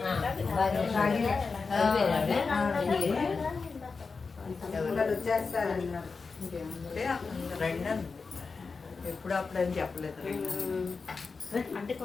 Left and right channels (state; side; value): quieter; right; 4.6 dB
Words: ఎప్పుడు అప్పుడని చెప్పలేదు. అంటే